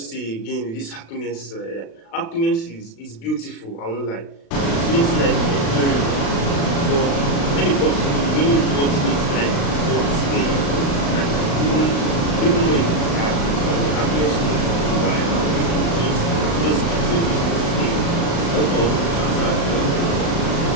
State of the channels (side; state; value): right; late; 36 ms